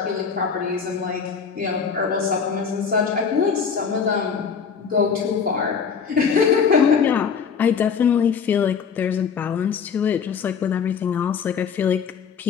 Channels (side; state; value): right; quieter; 6.3 dB